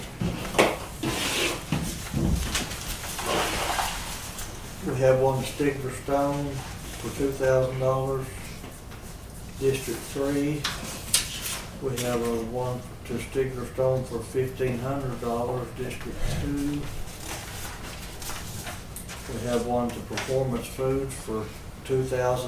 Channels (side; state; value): both; identical; correlation 1.00